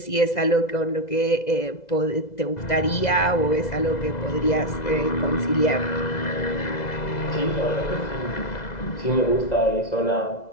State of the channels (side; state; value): right; late; 2.0 ms